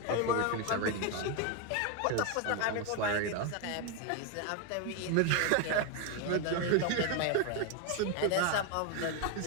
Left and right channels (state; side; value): different; both; correlation 0.01